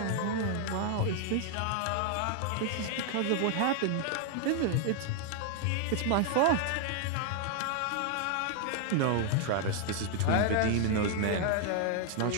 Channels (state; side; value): different; both; correlation 0.00